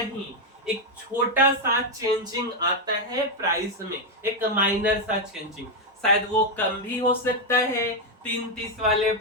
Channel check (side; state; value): both; normal; correlation 0.03